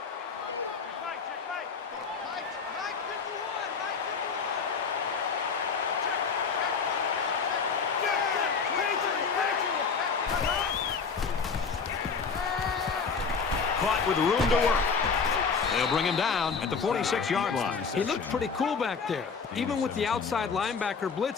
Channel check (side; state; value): right; quieter; 5.4 dB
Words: Caught with room to work. They'll bring him down at the 46-yard line. He looked pretty cool back there. Even with the outside linebacker